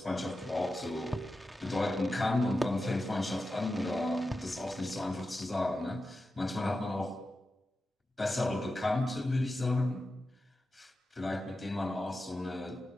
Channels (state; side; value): normal; both; correlation 0.91